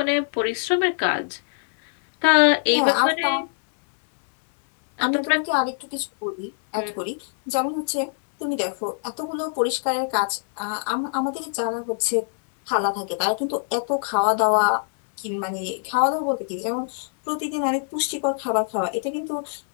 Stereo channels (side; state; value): right; silent; 63 dB below the other